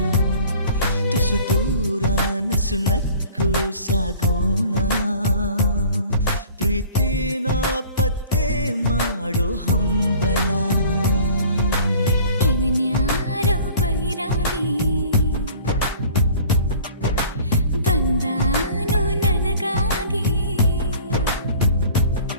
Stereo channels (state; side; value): inverted; both; correlation -0.48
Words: ತುಸು ದೂರ ನಸು ನಕ್ಕು ಸಾಗೋಣ, ಪ್ರೀತಿನ ಪತ್ತೆ ಮಾಡೋ ಹಂಬಲ. ಇವನ್ಯಾರೋ ಬೈರಾಗಿ ಬಂದಾನು ನನಗಾಗಿ,